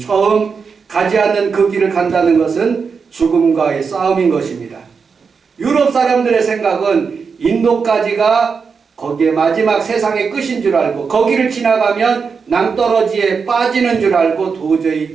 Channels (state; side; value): quieter; left; 5.5 dB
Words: 가지 않는 그 길을 간다는 것은 죽음과의 싸움인 것입니다. 유럽 사람들의 생각은 인도까지가 거기에 마지막 세상의 끝인 줄 알고 거기를 지나가면 낭떠러지에 빠지는 줄 알고